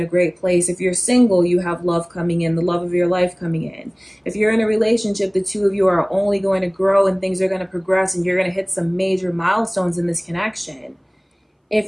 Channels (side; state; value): both; identical; correlation 1.00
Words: great place. If you're single, you have love coming in, the love of your life coming in. If you're in a relationship, the two of you are only going to grow and things are going to progress and you're going to hit some major milestones in this connection.